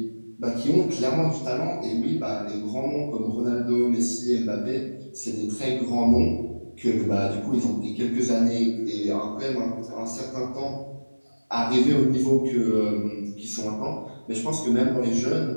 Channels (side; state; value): both; inverted; correlation -1.00